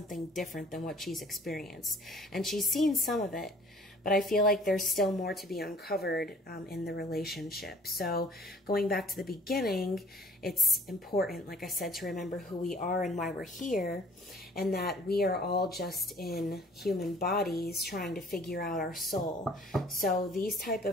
different than what she's experienced. And she's seen some of it, but I feel like there's still more to be uncovered in the relationship. So going back to the beginning, it's important, like I said, to remember who we are and why we're here, and that we are all just in human bodies trying to figure out our soul. So these type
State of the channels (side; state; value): both; normal; correlation 0.54